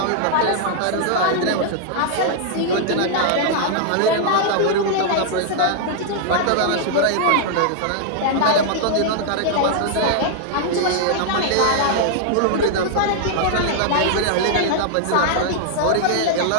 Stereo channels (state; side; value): different; both; correlation -0.01